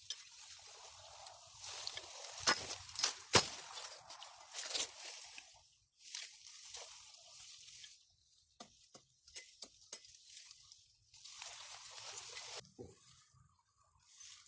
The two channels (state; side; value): identical; both; correlation 1.00